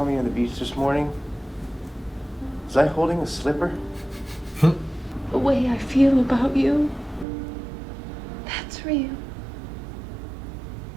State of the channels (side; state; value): left; drops out; at 7.2 s